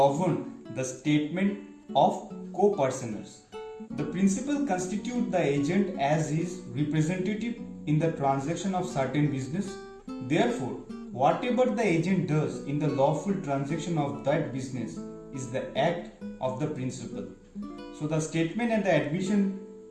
the statement of co-personers. The principal constitute the agent as his representative in the transaction of certain business. Therefore, whatever the agent does in the lawful transaction of that business is the act of the principal. So the statement and the admission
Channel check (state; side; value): identical; both; correlation 1.00